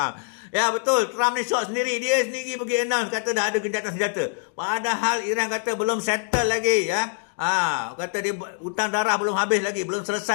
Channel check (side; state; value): right; silent; 62 dB below the other